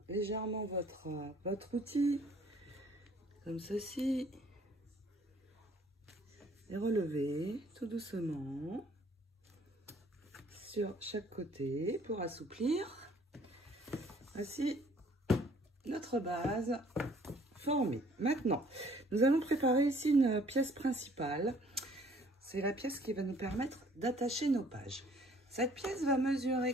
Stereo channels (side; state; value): both; normal; correlation 0.58